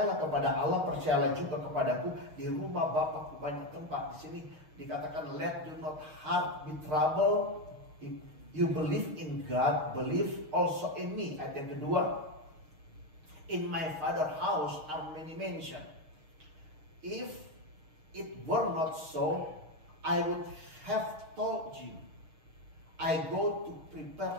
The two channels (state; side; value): late; left; 6.5 ms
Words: kepada Allah, percayalah juga kepadaku. Di rumah Bapakku banyak tempat. Di sini dikatakan, let do not heart be troubled. If you believe in God, believe also in me. Ayat yang kedua, in my Father's house are many mansions. If it were not so, I would have told you. I go to